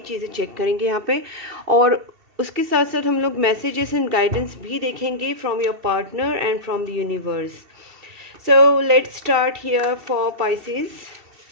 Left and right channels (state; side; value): late; left; 2.7 ms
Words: चीज़ें चेक करेंगे यहाँ पे, और उसके साथ साथ हम लोग मैसेजेस एंड गाइडेंस भी देखेंगे from your partner and from the universe. So let's start here for Pisces.